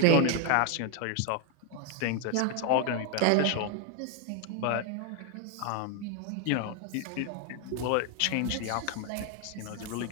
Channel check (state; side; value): different; both; correlation 0.01